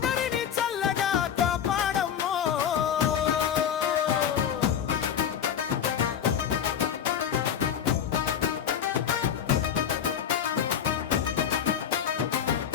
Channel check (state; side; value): quieter; right; 8.7 dB